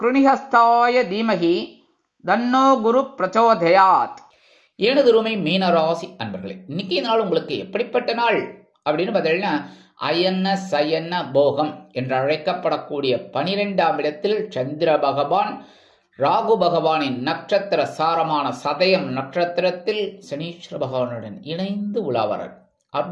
தீமகி தன்னோ குரு பிரச்சோதயாத். எனதுருமை மீனராசி அன்பர்களே, இன்னைக்கு நாள் உங்களுக்கு எப்படிப்பட்ட நாள் அப்படின்னு பார்த்தீங்கன்னா, அயன சயன போகம் என்று அழைக்கப்படக்கூடிய 12ஆம் இடத்தில் சந்திர பகவான் ராகு பகவானின் நட்சத்திர சாரமான சதயம் நட்சத்திரத்தில் சனீஸ்வர பகவானுடன் இணைந்து உலாவரார்.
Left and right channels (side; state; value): both; identical; correlation 1.00